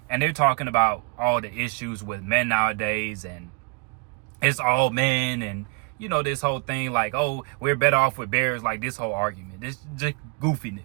And they're talking about all the issues with men nowadays. And it's all men. And, you know, this whole thing like, oh, we're better off with bears. Like this whole argument. This just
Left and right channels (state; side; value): quieter; left; 33.5 dB